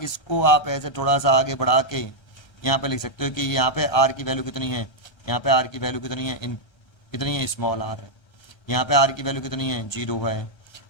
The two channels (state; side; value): late; right; 1.3 ms